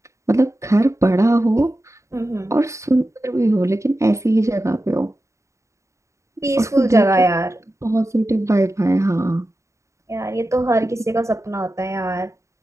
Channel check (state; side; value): late; left; 0.14 ms